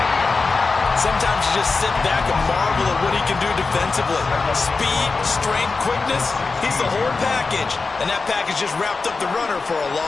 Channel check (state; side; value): quieter; right; 4.2 dB